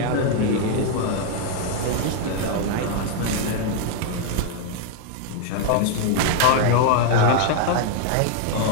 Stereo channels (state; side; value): different; both; correlation 0.00